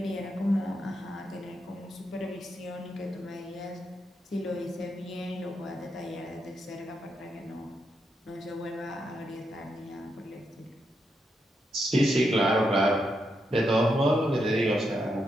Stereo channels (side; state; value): both; normal; correlation 0.82